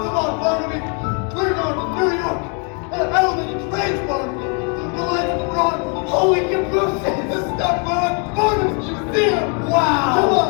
on, Barnaby, we're going to New York. Elevated trains, Barnaby. The lights of Broadway. Holy cabooses! The stuff on Barnum's Museum. Wow!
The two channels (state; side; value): quieter; right; 37.3 dB